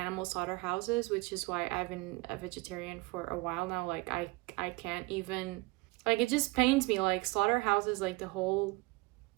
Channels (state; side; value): quieter; left; 23.7 dB